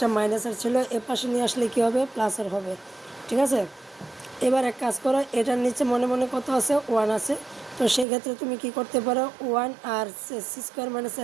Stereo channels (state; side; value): drops out; left; at 8.1 s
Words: মাইনাসের ছিল, এ পাশে নিয়ে আসলে কী হবে, প্লাসের হবে, ঠিক আছে। এবার এক কাজ করো, এটার নিচে মনে মনে কত আছে, 1 আছে, তো সেক্ষেত্রে তুমি কি করতে পারো, 1 আর সি স্কোয়ার মাইনাস